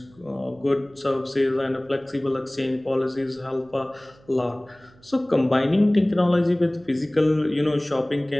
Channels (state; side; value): noise; right; hum, 28 dB below the sound